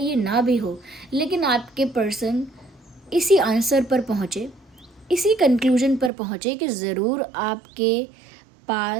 ये ना भी हो, लेकिन आपके पर्सन इसी आंसर पर पहुँचे, इसी कंक्लूजन पर पहुँचे कि ज़रूर आपके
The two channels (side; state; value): left; drops out; at 6.1 s